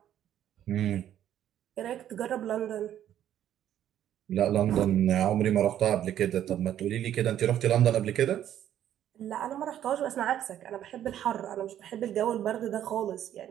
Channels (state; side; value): quieter; left; 11.1 dB